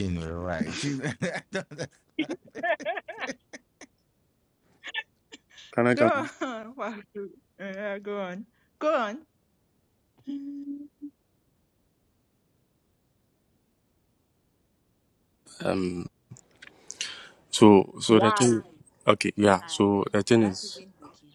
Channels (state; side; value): identical; both; correlation 1.00